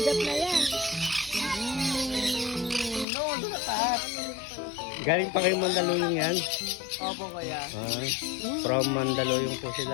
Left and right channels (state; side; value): drops out; right; at 3.1 s